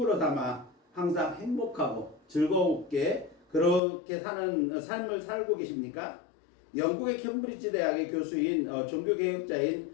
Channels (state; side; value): drops out; right; at 3.8 s